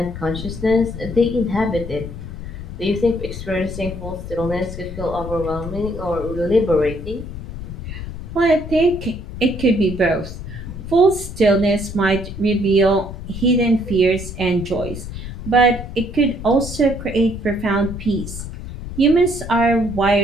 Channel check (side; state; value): left; noise; rumble, 9 dB below the sound